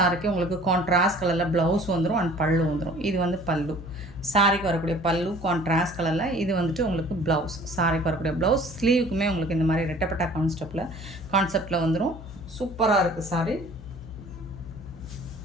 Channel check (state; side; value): noise; left; hum, 14 dB below the sound